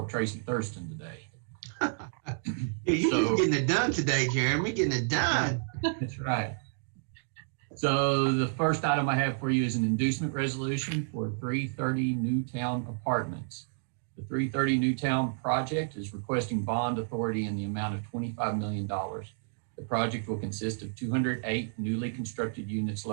of Tracy Thurston today. Yeah, you're just getting it done today, Jeremy. Getting it done. That's right. So the first item I have for you is an inducement resolution for 330 Newtown Apartments. The 330 Newtown project is requesting bond authority in the amount of $25 million. The project will consist of 208 newly constructed units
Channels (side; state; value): left; silent; digital silence